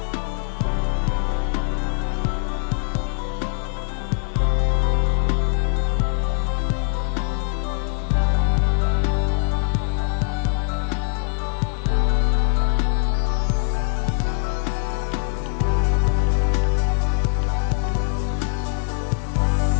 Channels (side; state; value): right; silent; digital silence